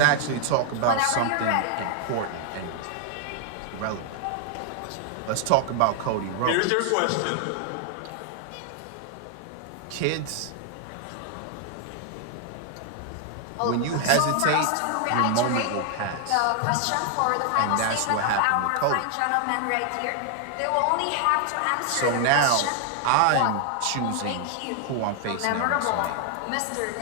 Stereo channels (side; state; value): both; different; correlation 0.00